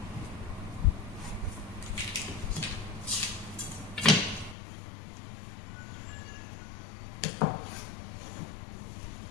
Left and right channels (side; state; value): right; drops out; at 4.5 s